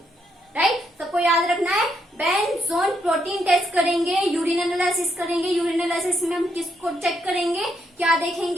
राइट। सबको याद रखना है, बेंजोन प्रोटीन टेस्ट करेंगे, यूरिन एनालिसिस करेंगे। यूरिन एनालिसिस में हम किसको चेक करेंगे, क्या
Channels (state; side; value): normal; both; correlation 0.77